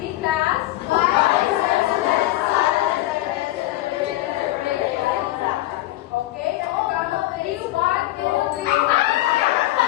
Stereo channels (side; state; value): right; quieter; 16.5 dB